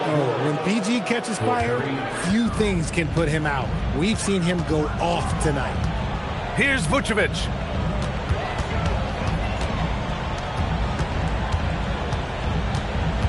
When PG catches fire, few things can put him out. We've seen him go off tonight. Here's Vucevic.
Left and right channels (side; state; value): both; identical; correlation 1.00